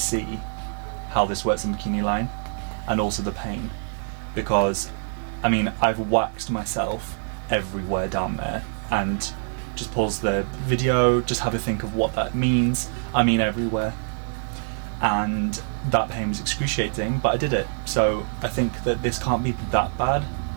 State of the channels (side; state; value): left; silent; digital silence